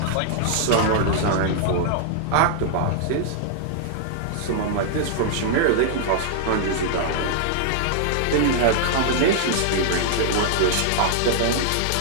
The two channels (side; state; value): both; different; correlation -0.01